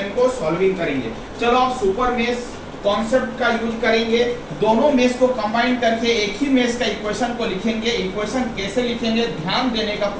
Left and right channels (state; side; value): identical; both; correlation 1.00